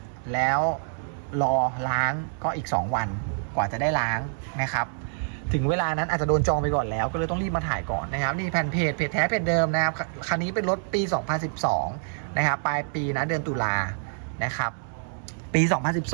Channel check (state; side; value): silent; left; 61 dB below the other